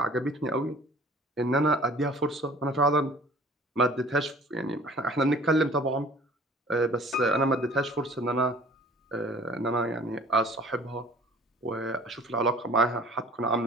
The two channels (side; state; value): both; normal; correlation 0.49